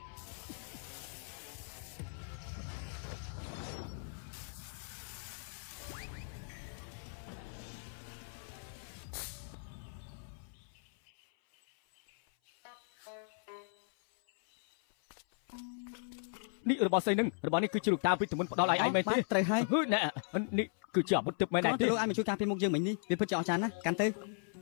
នេះរបស់ស្អីនឹងរបស់នេះគឺជាលោកតាពីទមុនផ្ដល់ឲ្យឯងមែនទេ ត្រូវហើយ ណែនេះគឺជាអាវុធទឹកមែន គ្រា ទេ ន់តែលោកឯងមកជួយការពារមុខយើងមិញនេះវាពិតជាអស្ចារ្យណាស់កាន់ទៅ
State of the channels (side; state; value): right; silent; 53 dB below the other